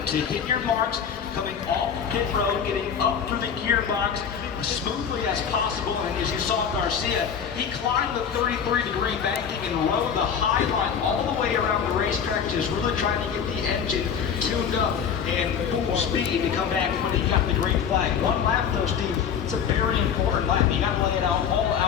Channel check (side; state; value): right; quieter; 7.5 dB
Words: to hit your marks coming off pit road, getting up through the gearbox as smoothly as possible. And as you saw Garcia, he climbed the 33-degree banking and rode the high line all the way around the racetrack, just really trying to get the engine tuned up and full speed to come back when he got the green flag. One lap though, Steve, it's a very important lap. You got to lay it out all